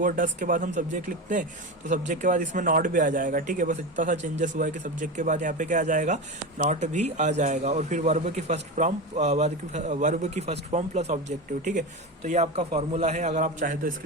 और डस के बाद हम सब्जेक्ट लिखते हैं तो सब्जेक्ट के बाद इसमें नॉट भी आ जाएगा। ठीक है, बस इतना सा चेंजेस हुआ है कि सब्जेक्ट के बाद यहाँ पे क्या आ जाएगा, नॉट भी आ जाएगा। और फिर वर्ब की फर्स्ट फॉर्म प्लस ऑब्जेक्टिव। ठीक है, तो ये आपका फॉर्मूला है, अगर आप चाहे तो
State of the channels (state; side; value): normal; both; correlation 0.21